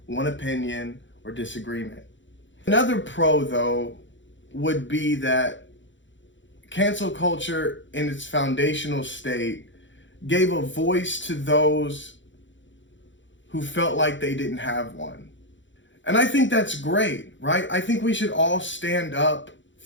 one opinion, or disagreement. Another pro, though, would be that cancel culture in its foundational state gave a voice to those who felt like they didn't have one. And I think that's great, right? I think we should all stand up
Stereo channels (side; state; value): right; late; 0.54 ms